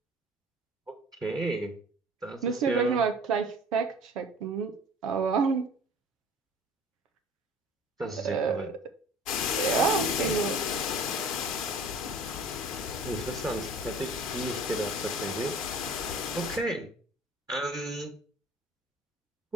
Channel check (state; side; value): normal; both; correlation 0.46